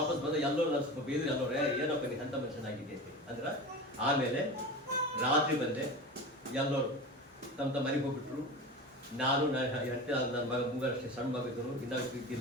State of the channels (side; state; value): both; normal; correlation 0.30